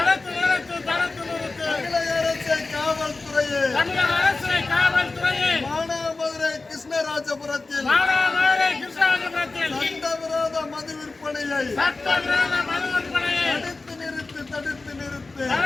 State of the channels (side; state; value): right; quieter; 3.6 dB